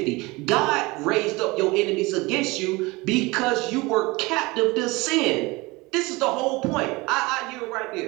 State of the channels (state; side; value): quieter; left; 23.3 dB